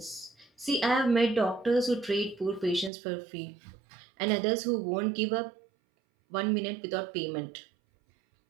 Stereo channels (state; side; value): drops out; left; at 2.9 s